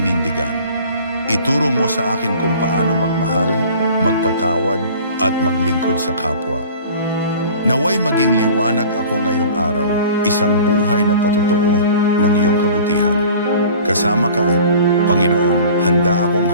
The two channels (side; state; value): both; inverted; correlation -0.45